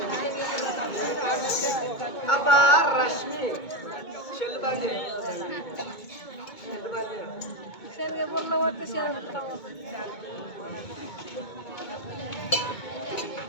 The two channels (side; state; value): right; late; 2.2 ms